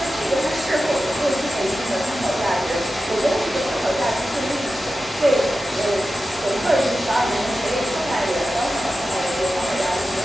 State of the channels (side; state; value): both; normal; correlation 0.93